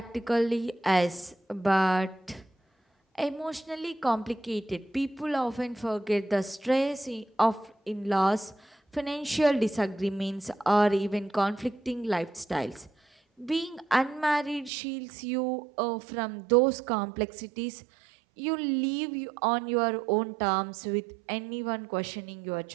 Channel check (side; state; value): left; drops out; at 14.7 s